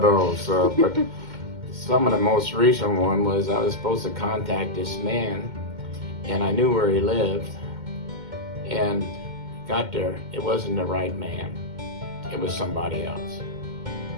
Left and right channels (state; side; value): late; left; 2.1 ms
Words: those, but some of the most recent one was I was supposed to contact this man, and I knew where he lived, and got there. It wasn't the right man. It was somebody else.